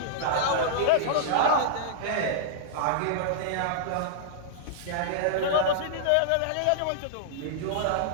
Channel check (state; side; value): different; both; correlation -0.02